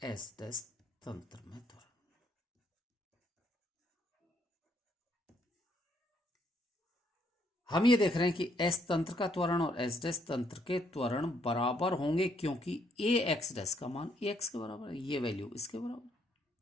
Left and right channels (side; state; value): both; normal; correlation 0.71